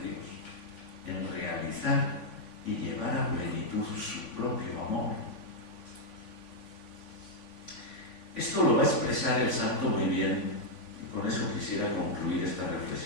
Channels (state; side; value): late; right; 3.5 ms